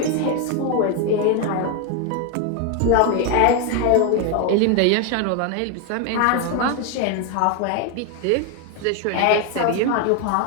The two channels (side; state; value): both; different; correlation 0.01